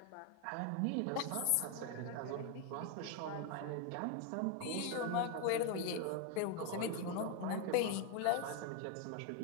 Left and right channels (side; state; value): both; different; correlation 0.01